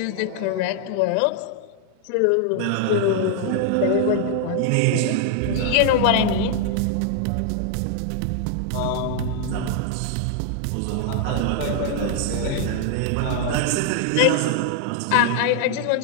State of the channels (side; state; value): both; different; correlation 0.00